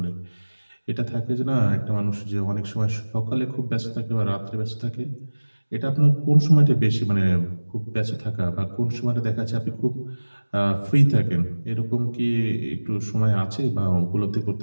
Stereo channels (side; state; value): both; inverted; correlation -1.00